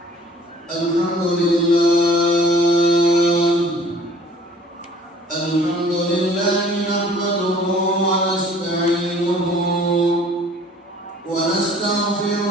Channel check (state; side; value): normal; both; correlation 0.51